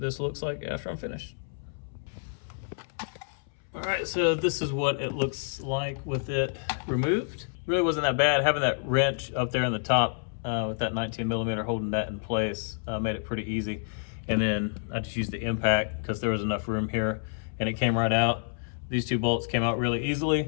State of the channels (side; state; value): right; silent; 59 dB below the other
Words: looks like after I'm finished. All right, so this is what it looks like with it removed. Really wasn't that bad. Having that wrench up there on the top with that 19mm holding that in place made it pretty easy. And then I just used the impact because there was enough room here and it came right out. These 2 bolts came out really easily.